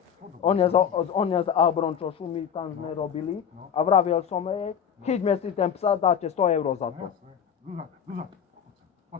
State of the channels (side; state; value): right; quieter; 8.0 dB